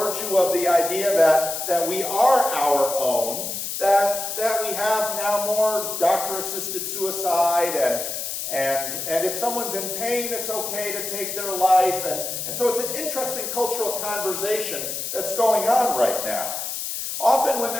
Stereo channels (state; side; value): noise; left; hiss, 4 dB below the sound